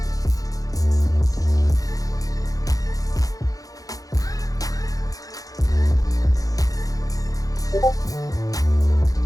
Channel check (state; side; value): late; right; 0.17 ms